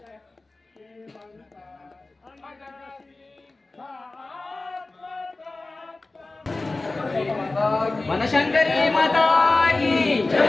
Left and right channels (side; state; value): right; quieter; 3.2 dB